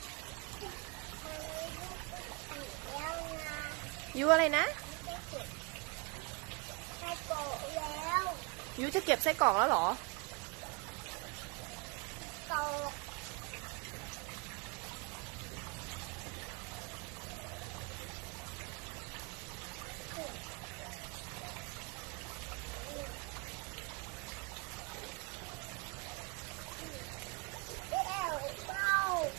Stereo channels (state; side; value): quieter; left; 30.2 dB